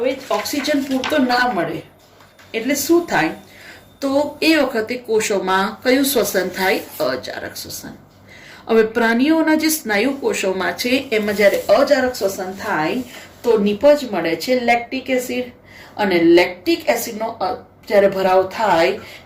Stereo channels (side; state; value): both; identical; correlation 1.00